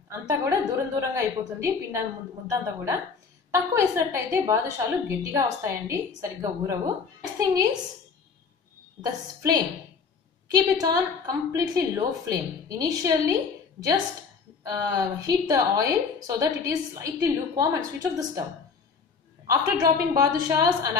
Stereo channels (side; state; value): right; quieter; 5.5 dB